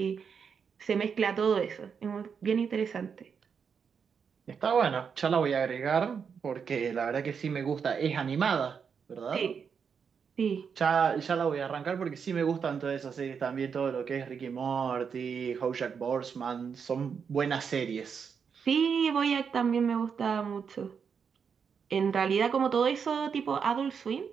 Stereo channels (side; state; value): left; quieter; 6.5 dB